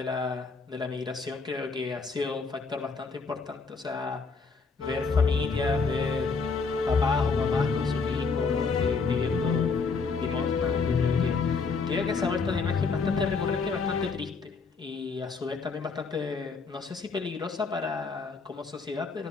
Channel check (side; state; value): right; quieter; 4.7 dB